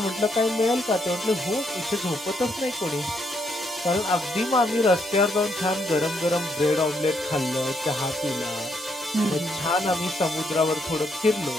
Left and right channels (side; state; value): both; normal; correlation 0.75